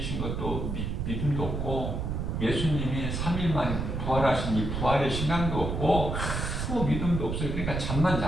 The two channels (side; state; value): right; noise; rumble, 2 dB below the sound